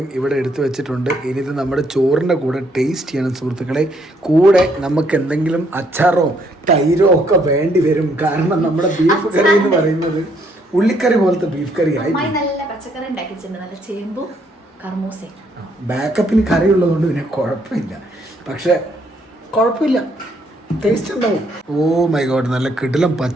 ഇവിടെ എടുത്തു വെച്ചിട്ടുണ്ട്. ഇനി ഇത് നമ്മുടെ ചോറിൻ്റെ കൂടെ ടേസ്റ്റ് ചെയ്യണം സുഹൃത്തുക്കളെ. കൂടെ നമുക്ക് എന്തെങ്കിലും അച്ചാറോ തൈരോ ഒക്കെ വേണ്ടി വരും. കാരണം നമ്മുടെ ബീഫ് കറി എന്ന് പറയുന്നത് ഉള്ളിക്കറി പോലത്തെ ബീഫ് കറി ആയി. നല്ല പച്ചക്കറി ഉണ്ടാക്കിയിട്ടുണ്ട്, നല്ല ചേമ്പും കർമൂസയും. ബാക്കപ്പിന് കറി ഉള്ളതുകൊണ്ട് പിന്നെ കുഴപ്പമില്ല. പക്ഷെ കുഴപ്പമില്ല, ടേസ്റ്റ് ഉണ്ടാവും. ഓ മൈ ഗോഡ്, നല്ല കിടിലം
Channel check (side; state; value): both; normal; correlation 0.70